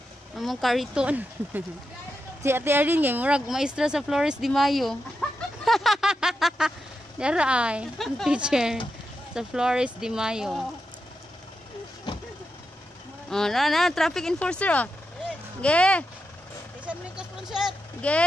among kariton. Si Ate Arlene ngay murag maestra sa Flores de Mayo. Dara ay, ang teacher sa Flores de Mayo. Oh, na traffic enforcer oh. Ge. Isang likas punset.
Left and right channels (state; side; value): normal; both; correlation 0.87